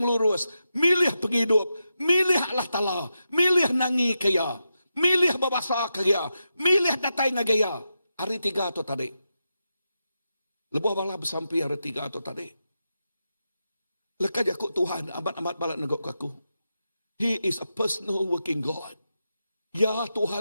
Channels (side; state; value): both; inverted; correlation -0.88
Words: milih penghidup, milih Allah Ta'ala, milih nangi kaya, milih babasa kaya, milih datai ngagaya. Hari 3 tu tadi. Lebih bala bersampai hari 3 tu tadi. Lekas aku Tuhan amat-amat balak negok aku. He is a personal working God. Ya